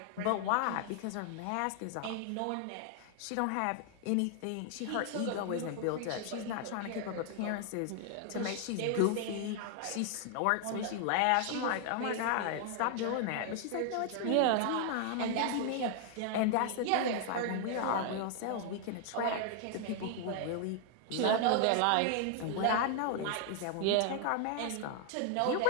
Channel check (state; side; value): different; both; correlation 0.00